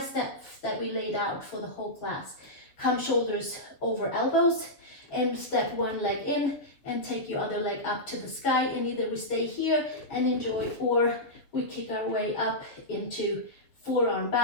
that we laid out for the whole class. Come shoulders over elbows and step one leg in and take your other leg up to the sky, and either we stay here and enjoy, or we kick our way up into forearm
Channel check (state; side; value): late; right; 7.1 ms